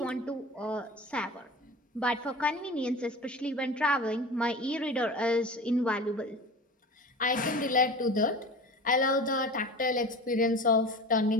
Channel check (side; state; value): both; normal; correlation 0.35